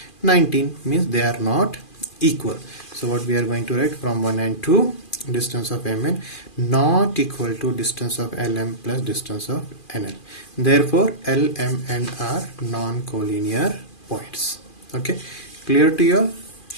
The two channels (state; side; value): late; right; 2.4 ms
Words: 19. Means they are not equal. So what we are going to write from 1 and 2, distance of MN not equal to distance of LM plus distance of NL. Therefore L, M and R non-collinear points. Okay, clear to you all?